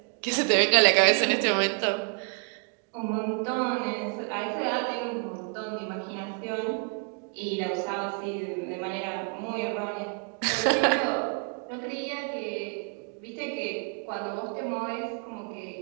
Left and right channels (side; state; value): left; quieter; 39.7 dB